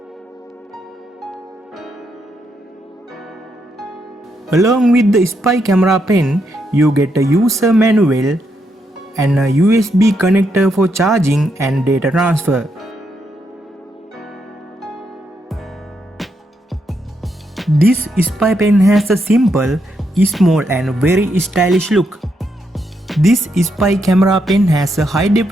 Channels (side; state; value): both; normal; correlation 0.80